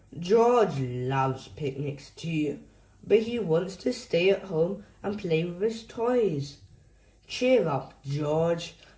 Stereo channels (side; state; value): both; identical; correlation 1.00